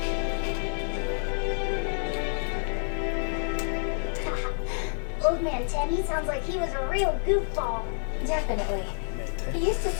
Old man Teddy sounds like he was a real goofball. Definitely. He used to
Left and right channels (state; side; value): silent; right; 59 dB below the other